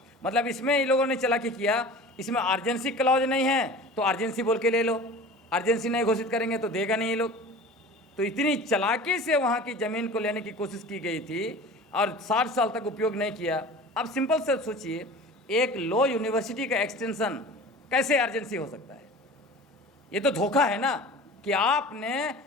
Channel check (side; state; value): both; normal; correlation 0.38